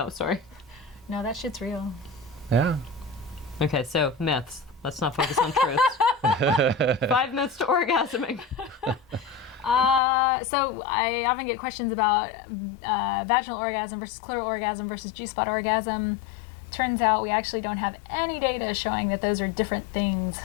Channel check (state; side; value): drops out; right; at 10.0 s